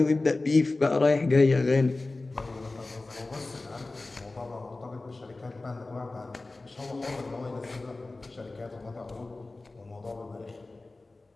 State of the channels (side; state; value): right; quieter; 3.2 dB